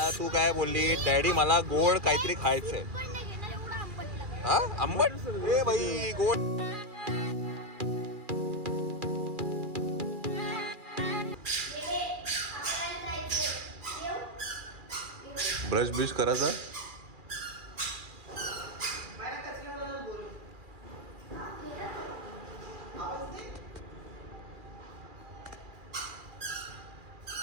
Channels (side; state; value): left; late; 2.4 ms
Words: तू काय बोलली डॅडी मला गोड काहीतरी खायचंय. हा आंबट ए बाई गोड. ब्रश ब्रश करायचा.